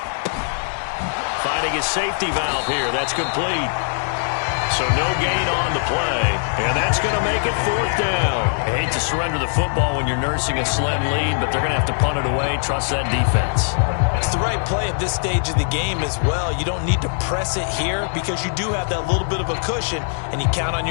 Finding his safety valve here. That's complete. So no gain on the play. And that's going to make it 4th down. I hate to surrender the football when you're nursing a slim lead, but they're going to have to punt it away. Trust that defense. It's the right play at this stage of the game as well. You don't need to press it here because you do have that little bit of a cushion, and you count on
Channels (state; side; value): silent; right; 65 dB below the other